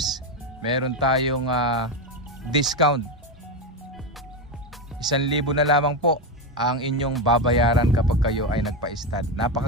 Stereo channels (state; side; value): normal; both; correlation 0.12